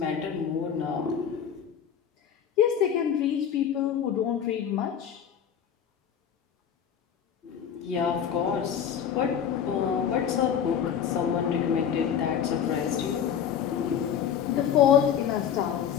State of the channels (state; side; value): quieter; right; 8.4 dB